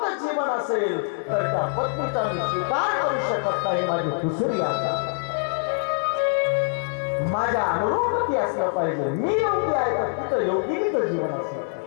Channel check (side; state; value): right; silent; digital silence